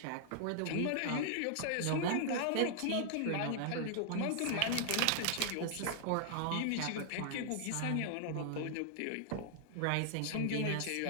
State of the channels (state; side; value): different; both; correlation 0.00